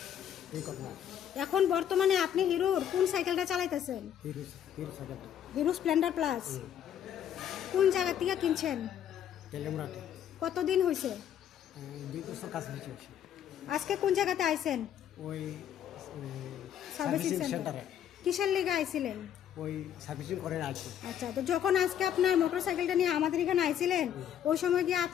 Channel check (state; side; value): quieter; right; 9.8 dB